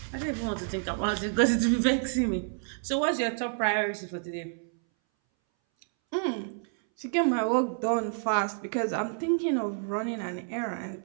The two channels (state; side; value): silent; left; 59 dB below the other